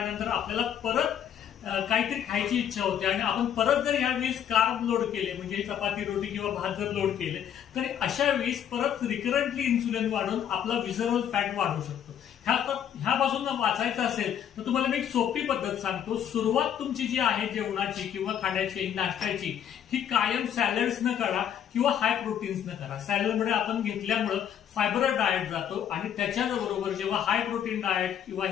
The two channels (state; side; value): quieter; right; 9.4 dB